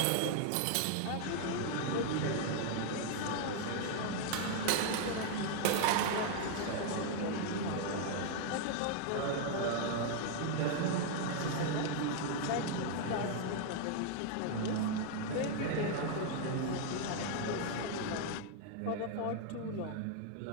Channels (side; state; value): both; different; correlation 0.00